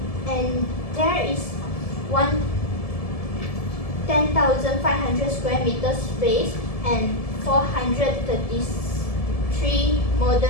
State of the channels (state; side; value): late; right; 1.7 ms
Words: and there is 10,500 square meters space and 433